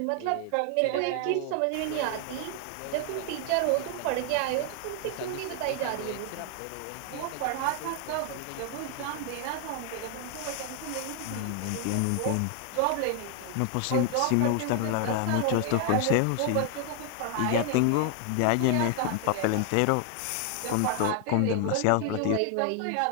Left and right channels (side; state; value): both; different; correlation 0.00